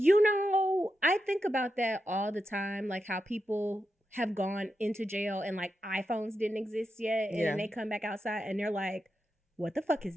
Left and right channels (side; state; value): both; normal; correlation 0.87